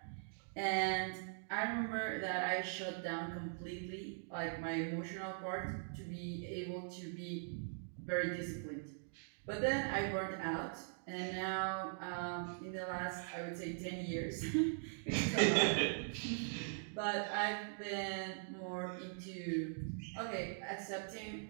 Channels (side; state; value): left; silent; digital silence